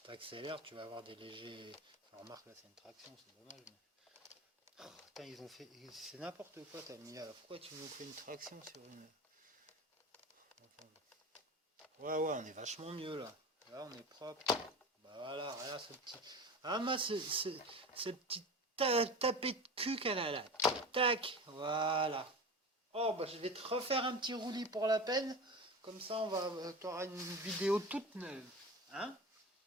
tu accélères, tu vas avoir des légers. Enfin, remarque là c'est une traction, c'est dommage. Mais... Oh, putain, ils ont fait. C'est n'importe quoi, t'as mis. Alors pourquoi tu nous fais une traction sur une. Enfin... Ouais, on est vachement mieux là. Là on est propre. Bah voilà, regarde ce petit. Ah, moi, ce petit tapé de cul qu'elle a là. Tac, voilà. Oh, bah je vais te refaire un petit roulis pour la peine. Comme ça, tu auras une vidéo toute neuve. Hein?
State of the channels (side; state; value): both; normal; correlation 0.31